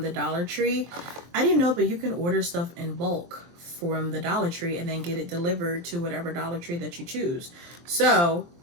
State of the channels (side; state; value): left; late; 23 ms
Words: the Dollar Tree. I didn't know, but you can order stuff in bulk from the Dollar Tree and then get it delivered to whatever Dollar Tree that you choose. So